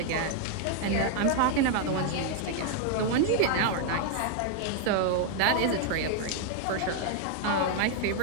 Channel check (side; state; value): both; different; correlation 0.00